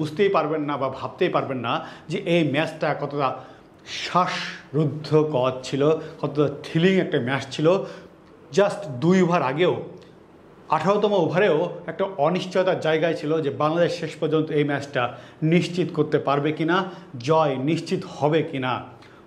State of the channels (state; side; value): identical; both; correlation 1.00